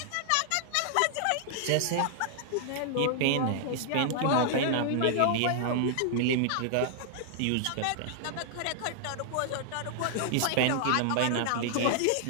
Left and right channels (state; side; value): different; both; correlation -0.01